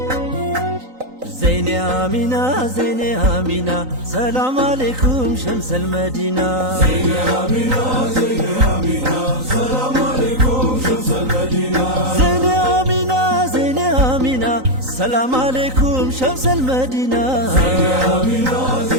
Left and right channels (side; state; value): left; late; 3.9 ms